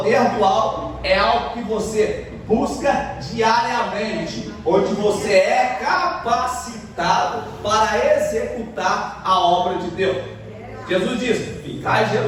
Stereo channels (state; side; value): identical; both; correlation 1.00